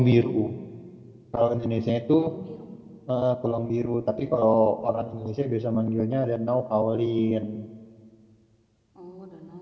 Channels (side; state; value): both; identical; correlation 1.00